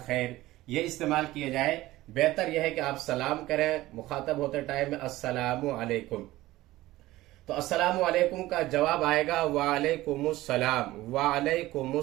ये इस्तेमाल किया जाए। बेहतर यह है कि आप सलाम करें मुखातब होते टाइम में, अस्सलामु अलैकुम। तो अस्सलामु अलैकुम का जवाब आएगा वालेकुमुस्सलाम,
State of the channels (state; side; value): quieter; left; 17.2 dB